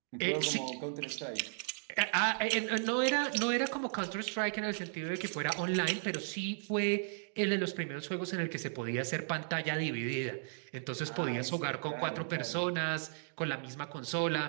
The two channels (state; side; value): silent; left; digital silence